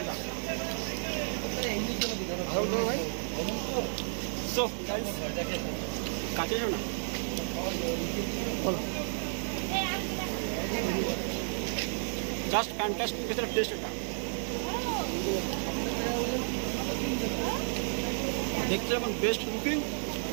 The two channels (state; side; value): silent; left; 56 dB below the other